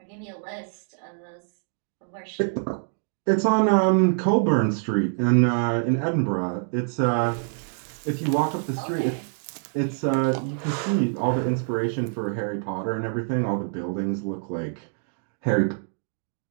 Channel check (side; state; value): left; silent; digital silence